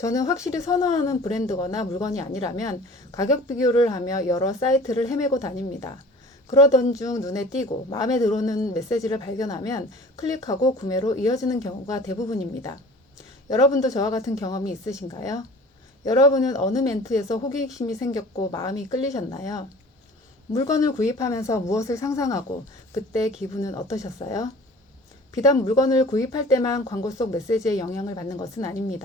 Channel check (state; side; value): normal; both; correlation 0.45